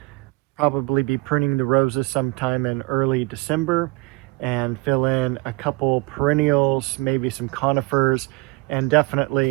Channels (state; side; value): quieter; left; 23.3 dB